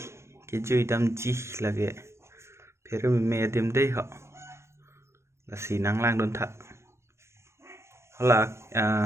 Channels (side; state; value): left; late; 0.13 ms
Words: cái chui đâm chi là cái phía bên mẹ tìm đây họ là xì nắng lang đôn thật họ là